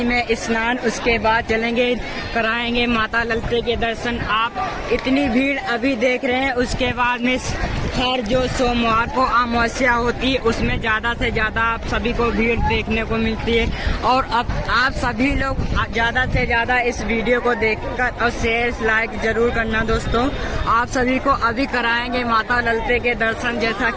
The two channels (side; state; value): both; identical; correlation 1.00